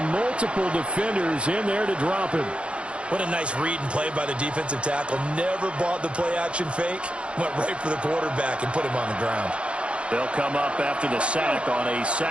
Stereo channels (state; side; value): late; left; 0.059 ms